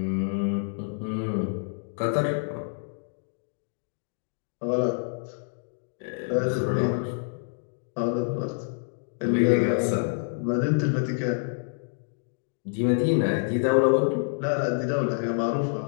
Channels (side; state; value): right; silent; digital silence